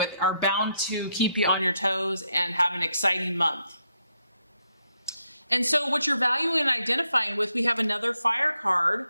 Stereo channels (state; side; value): inverted; both; correlation -0.79